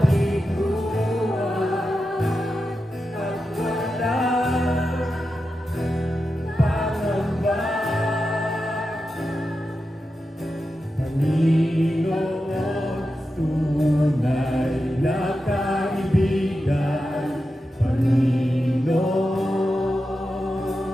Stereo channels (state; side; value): normal; both; correlation 0.90